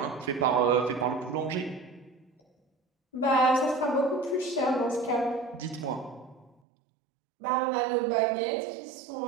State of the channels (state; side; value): drops out; left; at 6.6 s